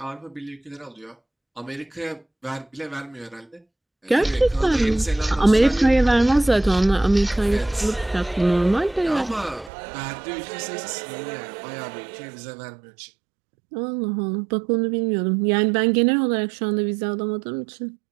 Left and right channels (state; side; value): drops out; left; at 9.7 s